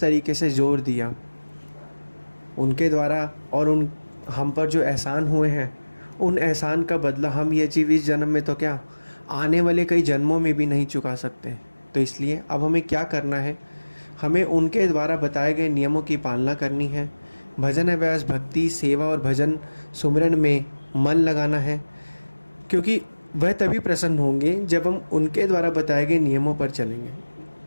से जोर दिया। उनके द्वारा और उन हम पर जो एहसान हुए हैं, उन एहसान का बदला हम ये जीव इस जन्म में तो क्या, आने वाले कई जन्मों में भी नहीं चुका सकते। तो इसलिए अब हमें क्या करना है, हमें उनके द्वारा बताए गए नियमों की पालना करनी है। भजन अभ्यास, भक्ति, सेवा और भजन सुमिरन में मन लगाना है, क्योंकि वह तभी प्रसन्न होंगे जब हम उनके द्वारा बताए गए नियमों पर चलेंगे।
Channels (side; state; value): both; inverted; correlation -1.00